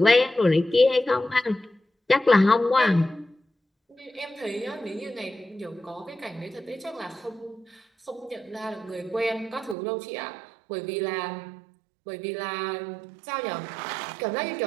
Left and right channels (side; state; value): left; drops out; at 9.8 s